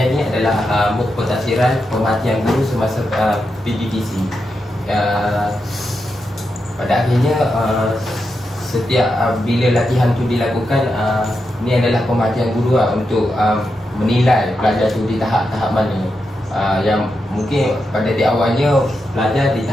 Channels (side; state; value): both; normal; correlation 0.86